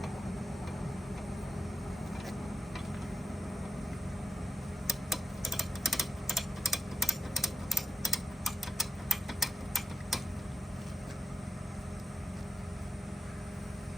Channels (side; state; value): both; normal; correlation 0.89